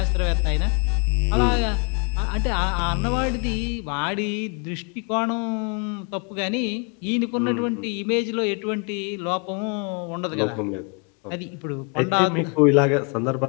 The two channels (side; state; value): right; quieter; 35.8 dB